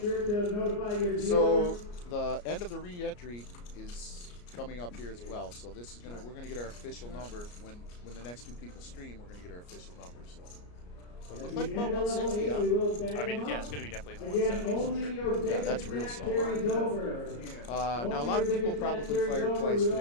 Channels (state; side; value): late; right; 34 ms